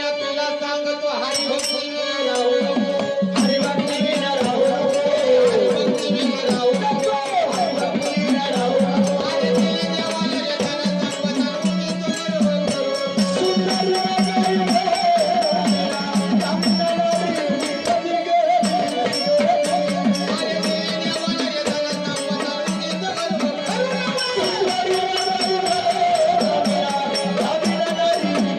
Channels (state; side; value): identical; both; correlation 1.00